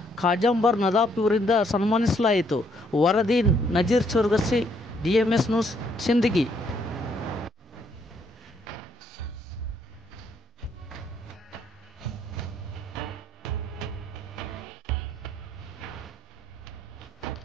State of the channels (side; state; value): both; normal; correlation 0.70